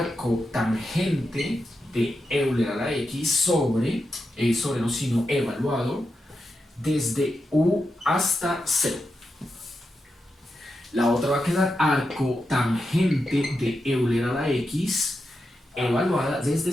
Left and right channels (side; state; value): both; normal; correlation 0.87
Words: tangente de Euler a la x sobre no sino evaluado desde u hasta 0. La otra va a quedar arco tangente de Euler a la x evaluada desde